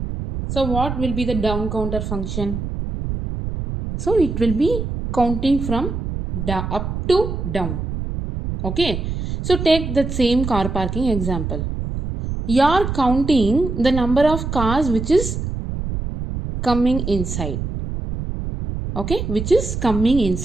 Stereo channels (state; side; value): noise; right; rumble, 4 dB below the sound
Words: So what will be the down counter function? So it will be counting from up to down. Okay. So take that same car parking example. You are counting the number of cars which is coming inside. Okay, which is coming